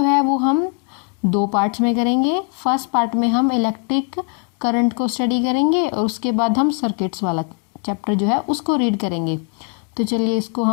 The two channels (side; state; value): right; quieter; 35.8 dB